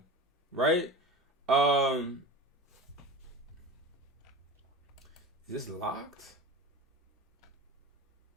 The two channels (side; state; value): both; normal; correlation 0.31